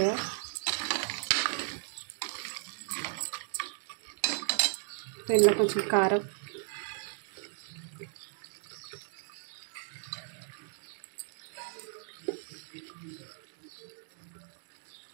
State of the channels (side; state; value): left; silent; 54 dB below the other